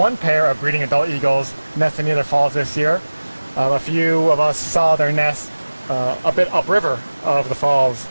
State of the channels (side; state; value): both; inverted; correlation -1.00